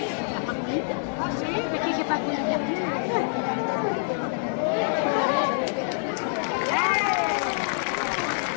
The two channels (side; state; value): right; silent; digital silence